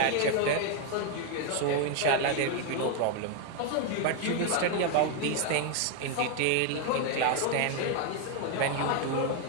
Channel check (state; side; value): different; both; correlation 0.01